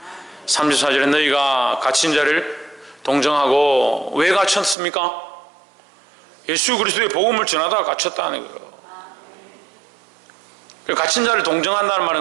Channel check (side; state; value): left; drops out; at 4.8 s